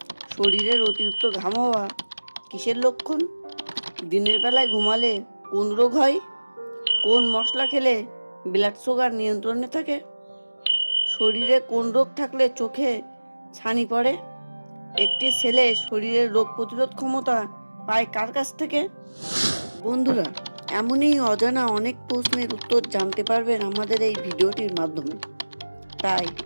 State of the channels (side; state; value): both; inverted; correlation -1.00